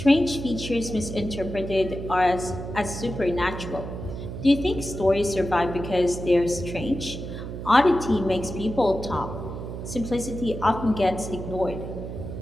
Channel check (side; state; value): right; noise; hum, 8 dB below the sound